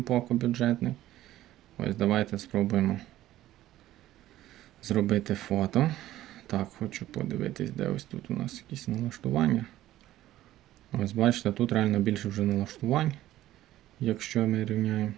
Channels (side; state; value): left; quieter; 14.4 dB